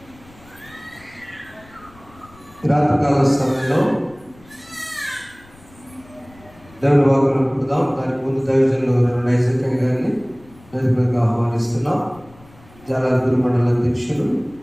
రాత్రికాల సమయంలో దేవుని వాక్యం పుడదాం. దానికి ముందు దైవజనులు నైసర్గంగా గారిని వేదికగా ఆహ్వానిస్తున్నాం. జాలాపూర్ మండల అధ్యక్షులు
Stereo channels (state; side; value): noise; left; rumble, 25 dB below the sound